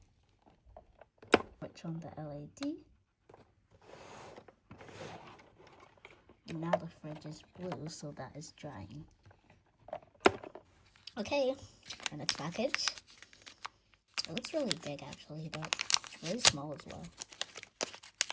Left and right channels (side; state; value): both; identical; correlation 1.00